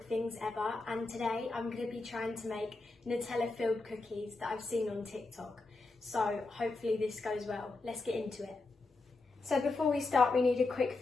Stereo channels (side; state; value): right; quieter; 3.4 dB